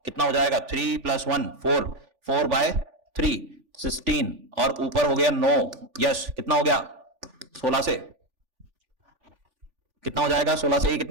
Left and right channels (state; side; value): late; left; 3.4 ms